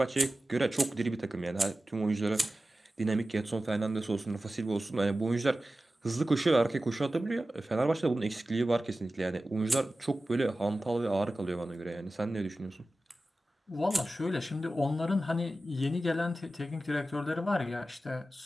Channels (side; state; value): both; normal; correlation 0.95